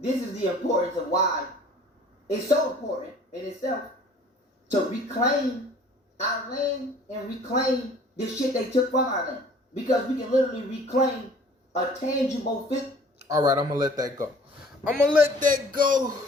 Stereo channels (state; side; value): normal; both; correlation 0.51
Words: is the importance of why it's so important in itself to reclaim our land and reclaim the shit they took from our land. Because we can literally reclaim a tangible fit. All right, I'm going to let that go. I'm going to let that go.